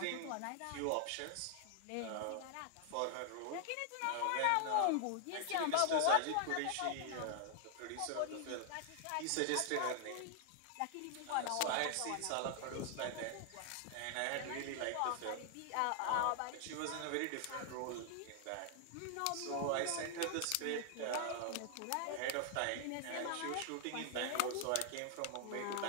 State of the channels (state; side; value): different; both; correlation 0.00